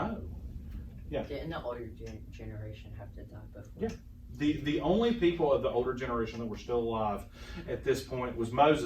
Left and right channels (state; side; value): identical; both; correlation 1.00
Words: Yeah. Didn't the older generation have to die before? Yeah. The only people of the older generation that were still alive at this point was